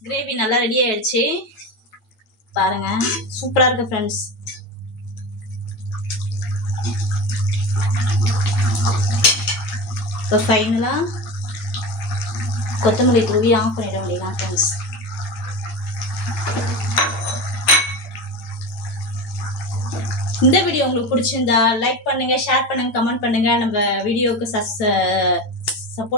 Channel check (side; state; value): right; late; 9.2 ms